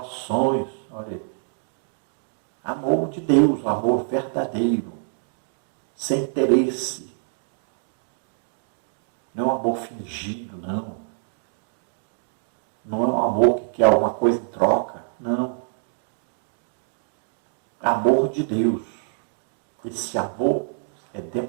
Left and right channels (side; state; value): left; silent; digital silence